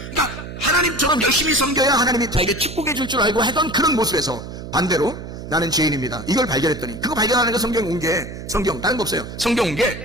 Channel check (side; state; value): right; noise; hum, 10 dB below the sound